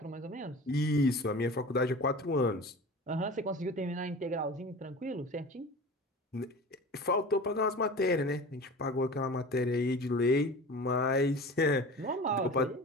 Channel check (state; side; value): normal; both; correlation 0.36